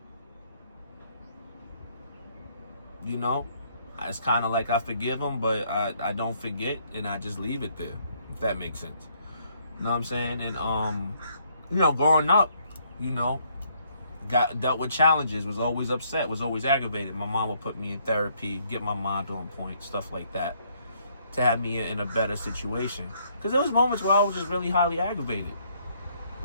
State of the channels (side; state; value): both; inverted; correlation -0.68